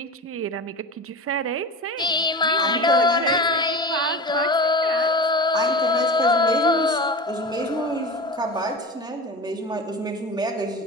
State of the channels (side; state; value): both; normal; correlation 0.30